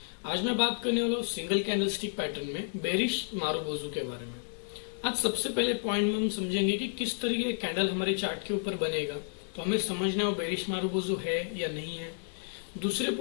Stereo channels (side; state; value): right; silent; 57 dB below the other